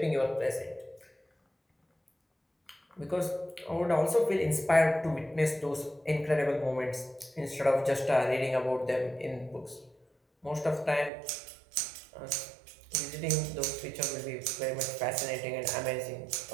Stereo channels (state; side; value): drops out; left; at 11.1 s